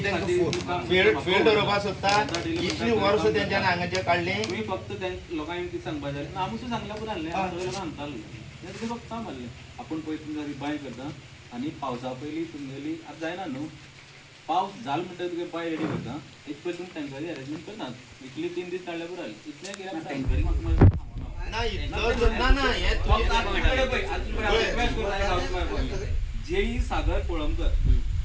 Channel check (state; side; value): identical; both; correlation 1.00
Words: तांकां फील्ड दवरपाक सोदता इतली वर्स तेंच्यान हांगाचे काडली फक्त लोकांनी कितें सांगपाक जाय आमचो सांगल्या पुरो आहलें सगळे लोक सांगताले ते फक्त म्हणलें आपण पळय तुमकां रिबाय करता आनी पावसा पयलीं तुमगेली आतां जायना न्हू पावस जाल म्हणटा तुगे बाय रेडी करता एक पयलीं तुमी टँकरी अरेंजमेंट करनात इतली 3 दीस काडल्या पुरो जालें इतलें कित्याक टँकरी म्हाका जेई सागर कोळंबकर